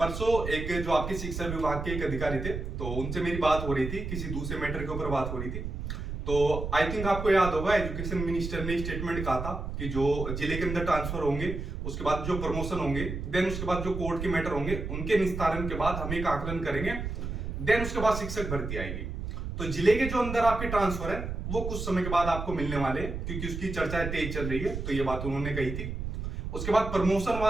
एक जो आपके शिक्षा विभाग के एक अधिकारी थे, तो उनसे मेरी बात हो रही थी, किसी दूसरे मैटर के ऊपर बात हो रही थी। तो आई थिंक आपको याद होगा, एजुकेशन मिनिस्टर ने स्टेटमेंट कहा था कि जो जिले के अंदर ट्रांसफर होंगे, उसके बाद जो प्रमोशन होंगे, देन उसके बाद जो कोर्ट के मैटर होंगे, उनके निस्तारण के बाद हम एक आकलन करेंगे, देन उसके बाद शिक्षक भर्ती आएगी। तो जिले के जो अंदर आपके ट्रांसफर है वो कुछ समय के बाद आपको मिलने वाले हैं, क्योंकि उसकी चर्चाएं तेज चल रही है। तो ये बात उन्होंने कही थी। उसके बाद प्रमोशन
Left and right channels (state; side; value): noise; right; rumble, 5 dB below the sound